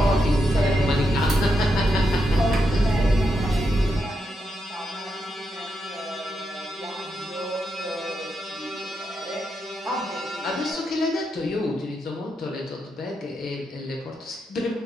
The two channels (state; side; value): normal; both; correlation 0.83